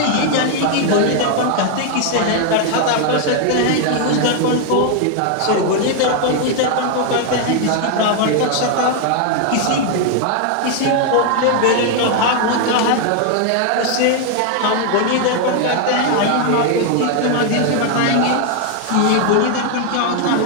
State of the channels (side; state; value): both; different; correlation 0.00